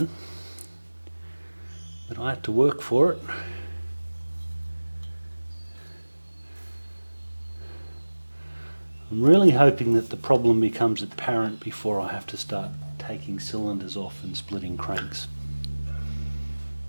but I have to work for it. I'm really hoping that the problem becomes apparent before I have to start taking cylinders off and splitting cranks.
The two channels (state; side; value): inverted; both; correlation -1.00